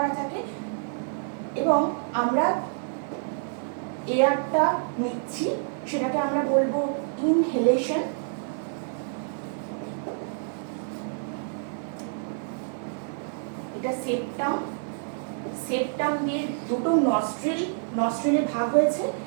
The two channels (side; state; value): left; silent; 60 dB below the other